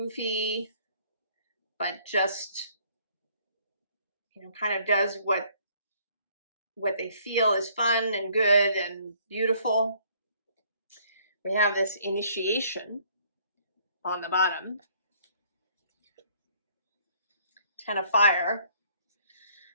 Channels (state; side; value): inverted; both; correlation -0.62